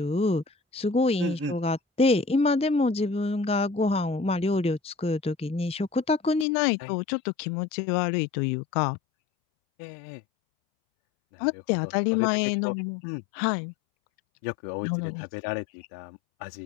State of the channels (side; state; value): right; drops out; at 6.5 s